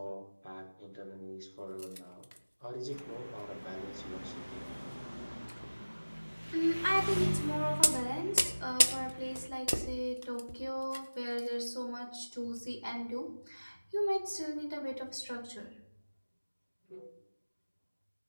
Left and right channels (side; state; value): both; inverted; correlation -1.00